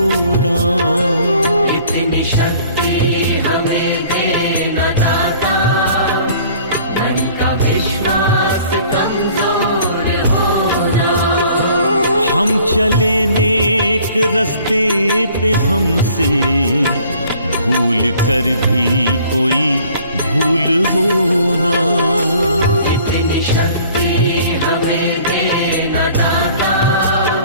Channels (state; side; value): inverted; both; correlation -0.53